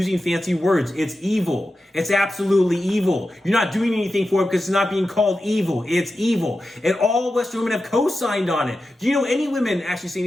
fancy words. It's evil. It's absolutely evil. You're not doing anything for it because it's not being called evil. It's evil. And all Western women have co-signed on it. Do you know any women actually say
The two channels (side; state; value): both; normal; correlation 0.91